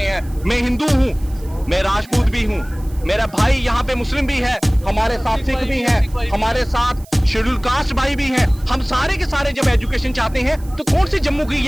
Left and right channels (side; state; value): right; noise; hiss, 24 dB below the sound